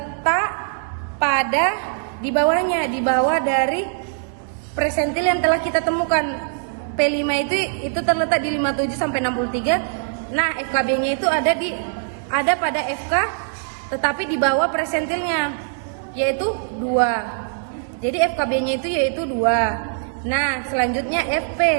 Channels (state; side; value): silent; left; digital silence